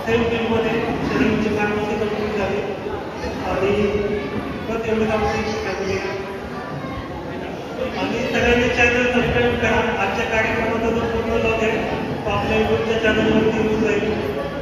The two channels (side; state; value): both; identical; correlation 1.00